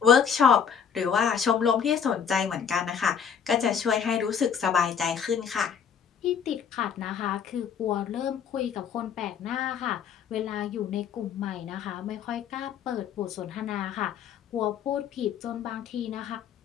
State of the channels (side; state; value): right; quieter; 7.4 dB